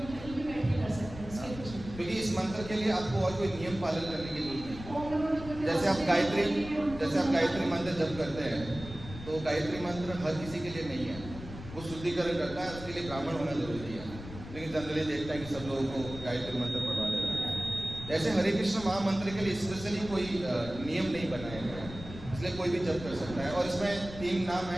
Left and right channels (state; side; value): noise; left; rumble, 12 dB below the sound